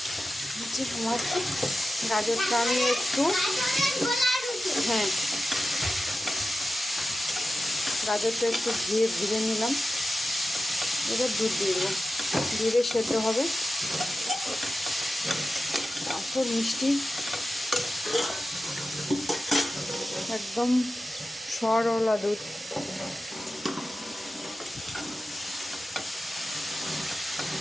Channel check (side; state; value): both; normal; correlation 0.93